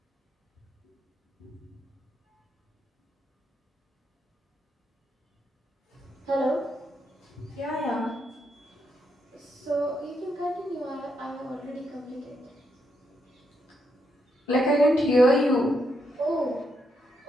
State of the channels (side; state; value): both; normal; correlation 0.80